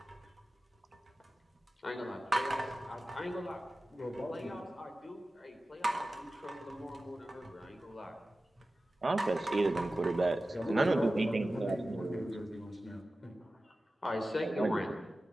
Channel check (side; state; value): both; normal; correlation 0.95